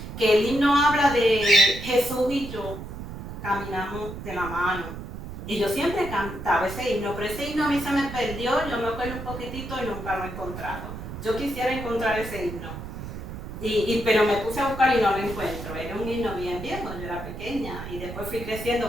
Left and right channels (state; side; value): noise; right; rumble, 9 dB below the sound